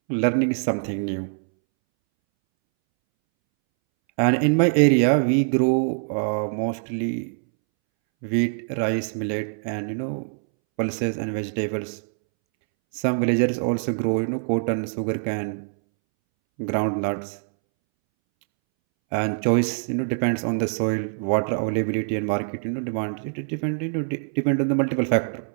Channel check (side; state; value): left; silent; 63 dB below the other